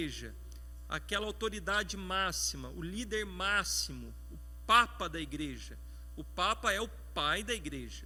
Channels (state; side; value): identical; both; correlation 1.00